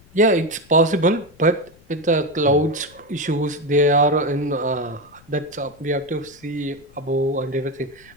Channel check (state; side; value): noise; left; rumble, 27 dB below the sound